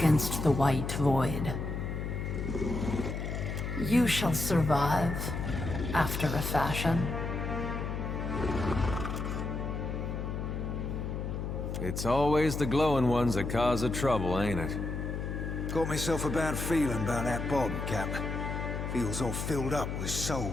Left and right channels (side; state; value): left; noise; hum, 4 dB below the sound